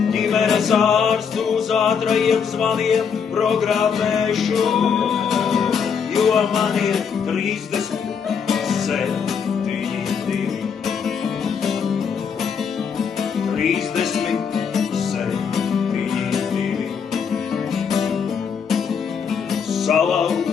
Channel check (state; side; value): quieter; right; 6.6 dB